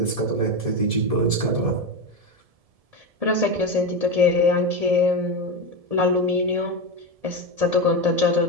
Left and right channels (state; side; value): late; left; 1.7 ms